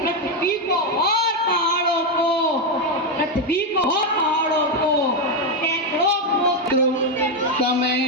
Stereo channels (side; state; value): both; normal; correlation 0.06